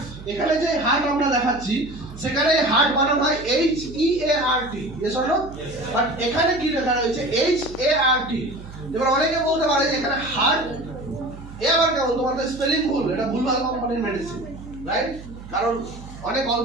এখানে যে হার্ট আমরা দেখাচ্ছি সেখানে হার্ট বানান হয় HEART, yes or no? But এখানে কি লেখা রয়েছে HART। এবার অনেকে বলতে পারে যে এখানে হার্ট, এ আবার কেমন, তোমাদের স্পেলিং ভুল, এটা ভুলভাল কোম্পানির মেডিসিন, রাইট? কারণ অনেক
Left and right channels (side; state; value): right; noise; hum, 15 dB below the sound